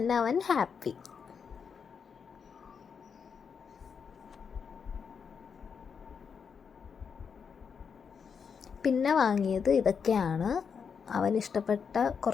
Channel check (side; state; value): right; quieter; 6.3 dB